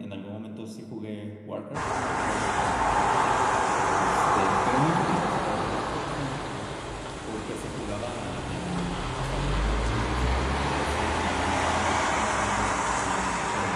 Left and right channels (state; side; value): identical; both; correlation 1.00